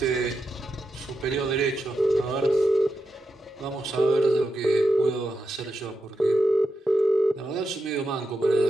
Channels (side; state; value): both; normal; correlation 0.86